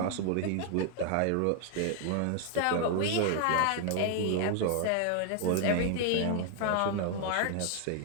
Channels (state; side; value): different; both; correlation 0.00